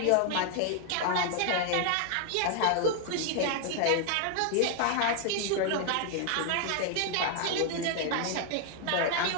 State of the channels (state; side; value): different; both; correlation 0.01